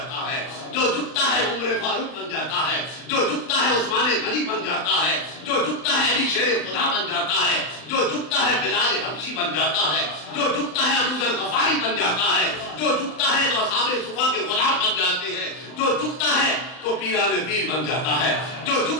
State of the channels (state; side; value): late; right; 39 ms